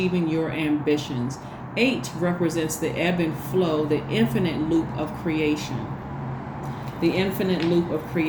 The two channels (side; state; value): both; identical; correlation 1.00